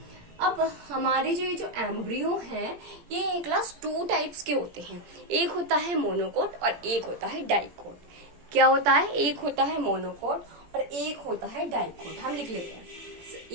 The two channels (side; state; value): left; late; 17 ms